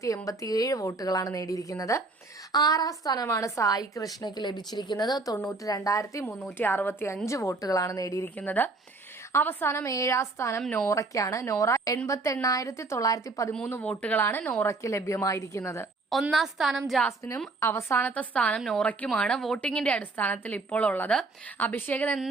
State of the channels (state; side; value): quieter; left; 3.6 dB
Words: വോട്ടുകളാണ് നേടിയിരിക്കുന്നത്. ആറാം സ്ഥാനമാണ് സായി കൃഷ്ണയ്ക്ക് ലഭിച്ചിരിക്കുന്നത്. 92,365 വോട്ടുകളാണ് നേടിയിരിക്കുന്നത്. അവസാനം ഏഴാം സ്ഥാനം നോറയ്ക്കാണ്. നോറ 88,913 വോട്ടുകളാണ് നോറയ്ക്ക് ലഭ്യമായിരിക്കുന്നത്. ഒന്നാം സ്ഥാനം ജാസ്മിനും അവസാനത്തെ സ്ഥാനം നോറയ്ക്കുമാണ് വോട്ടിങ്ങിന്റെ അടിസ്ഥാനത്തിൽ ഇപ്പോൾ ഉള്ളത്. അഭിഷേകൻ